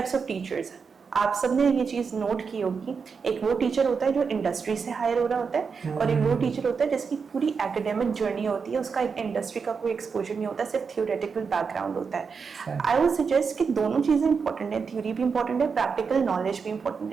of teachers. आप सबने ये चीज नोट की होगी, एक वो टीचर होता है जो इंडस्ट्री से हायर हो रहा होता है, और एक वो टीचर होता है जिसकी पूरी एकेडमिक जर्नी होती है, उसका इंडस्ट्री का कोई एक्सपोजर नहीं होता, सिर्फ थियोरेटिकल बैकग्राउंड होता है। आई वुड सजेस्ट कि दोनों चीजें इंपॉर्टेंट है, थ्योरी भी इंपॉर्टेंट है, प्रैक्टिकल नॉलेज भी इंपॉर्टेंट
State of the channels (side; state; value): left; quieter; 5.6 dB